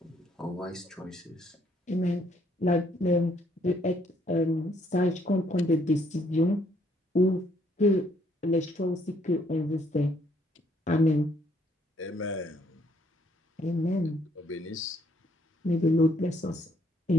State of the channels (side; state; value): both; normal; correlation 0.68